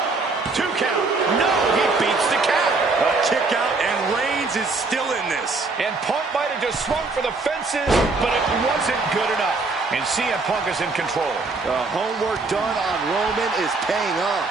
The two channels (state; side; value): quieter; left; 3.8 dB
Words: 2 count. No, he beats the count. A kick out, and Reigns is still in this. And Punk might have just swung for the fences, but it wasn't good enough. And CM Punk is in control. The homework done on Roman is paying